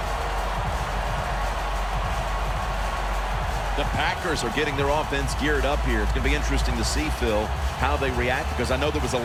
The Packers are getting their offense geared up here. It's going to be interesting to see, Phil, how they react, because I know there was a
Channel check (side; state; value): both; identical; correlation 1.00